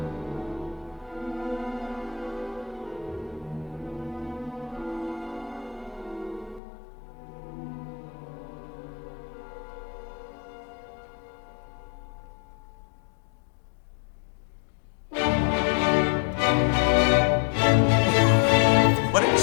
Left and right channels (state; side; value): drops out; right; at 6.6 s